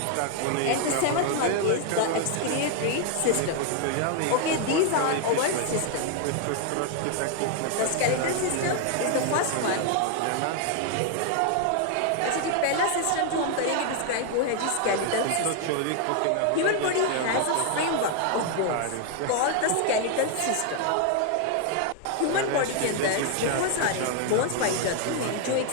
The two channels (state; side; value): different; both; correlation 0.00